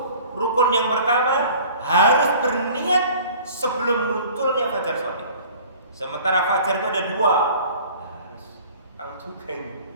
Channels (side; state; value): both; inverted; correlation -0.47